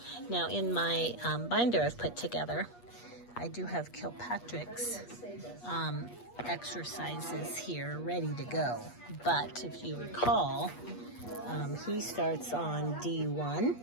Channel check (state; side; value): late; right; 8.4 ms